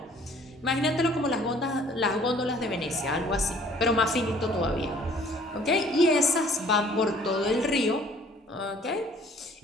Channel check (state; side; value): normal; both; correlation 0.55